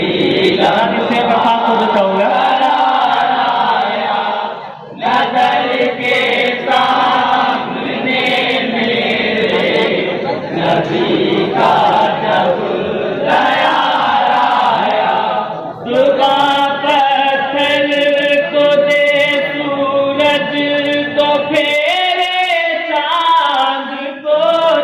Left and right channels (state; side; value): identical; both; correlation 1.00